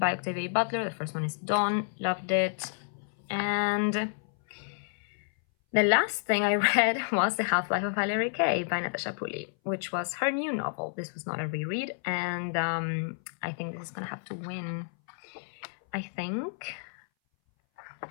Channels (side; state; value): right; silent; 58 dB below the other